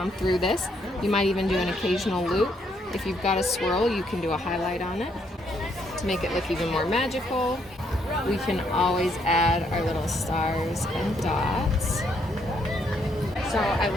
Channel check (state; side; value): normal; both; correlation 0.72